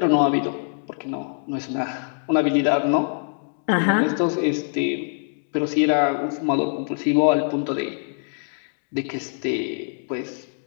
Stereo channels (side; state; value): right; silent; digital silence